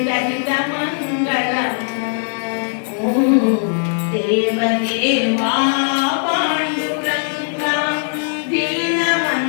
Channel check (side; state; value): right; silent; 67 dB below the other